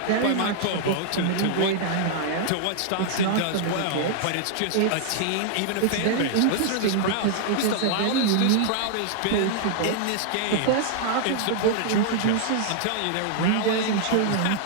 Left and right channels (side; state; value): both; different; correlation -0.01